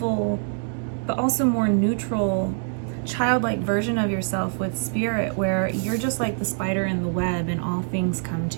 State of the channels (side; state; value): left; silent; 62 dB below the other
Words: but also more neutral, childlike version of yourself with spirit, where you're just like the spider in the web and all things come